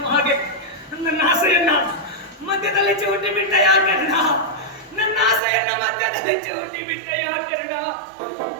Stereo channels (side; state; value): left; drops out; at 5.4 s